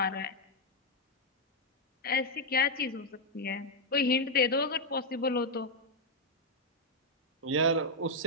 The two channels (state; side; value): normal; both; correlation -0.01